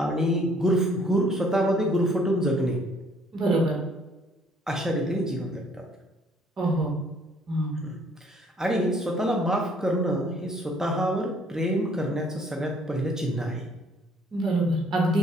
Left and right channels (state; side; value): normal; both; correlation 0.61